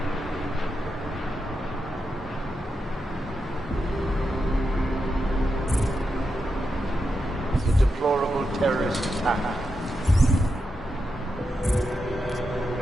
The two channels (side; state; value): both; normal; correlation 0.87